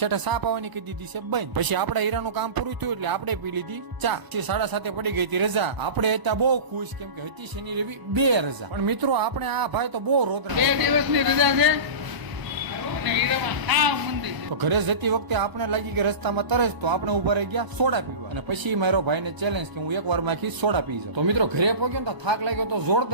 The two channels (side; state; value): left; late; 1.0 ms